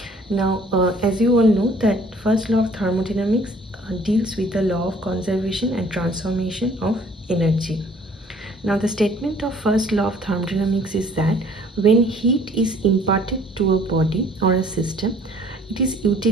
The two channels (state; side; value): normal; both; correlation 0.56